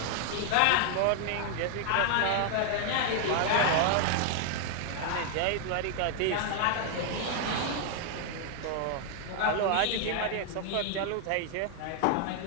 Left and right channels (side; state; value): both; different; correlation 0.00